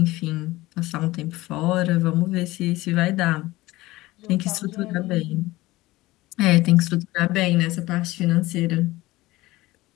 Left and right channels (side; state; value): right; quieter; 18.9 dB